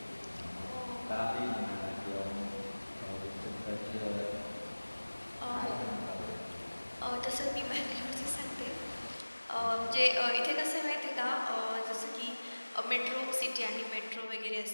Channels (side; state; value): both; inverted; correlation -1.00